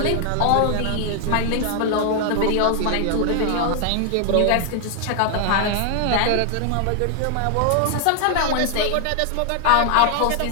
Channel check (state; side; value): different; both; correlation 0.00